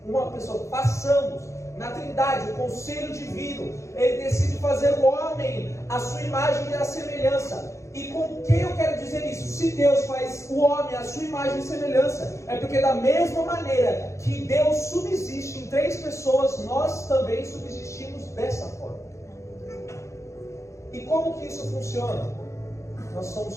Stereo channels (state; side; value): late; right; 0.14 ms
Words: uma pessoa, façamos. Na Trindade, o conselho divino, ele decide fazer o homem à sua imagem e à semelhança. E com que eu quero dizer isso? Se Deus faz o homem à sua imagem e semelhança, é porque da mesma maneira que Deus subsiste em 3 pessoas, nós também subsistimos dessa forma. E como que isso funciona? Nós